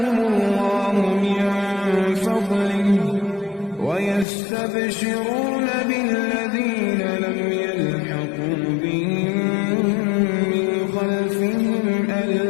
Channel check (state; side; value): drops out; right; at 4.2 s